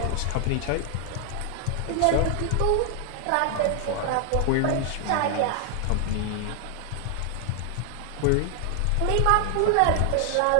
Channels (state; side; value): different; both; correlation 0.00